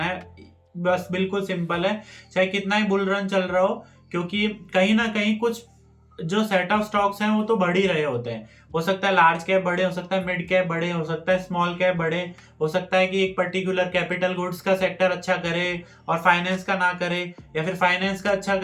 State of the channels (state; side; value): identical; both; correlation 1.00